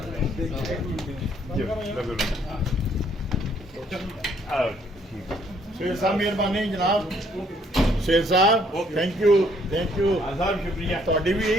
शेर साहब मेहरबानी जनाब। शेर साहब थैंक यू आजाद शुक्रिया। थोड़ी भी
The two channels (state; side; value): normal; both; correlation 0.65